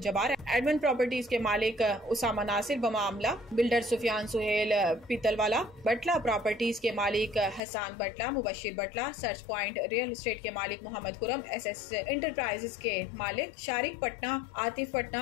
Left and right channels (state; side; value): drops out; right; at 7.6 s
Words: Jabbar, admin properties के मालिक उसामा नासिर बमामला, बिल्डर सुफियान सुहेल पीतलवाला, बटला प्रॉपर्टीज के मालिक Hasan Batla, Mubashir Batla, search point real estate के मालिक मोहम्मद खुरम, SS इंटरप्राइजेस के मालिक शारिक पटना, आतिफ